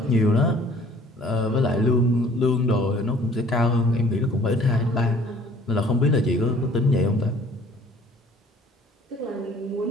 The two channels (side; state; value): both; normal; correlation 0.54